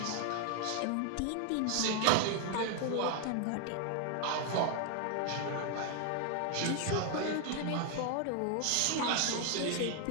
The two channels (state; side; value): different; both; correlation 0.00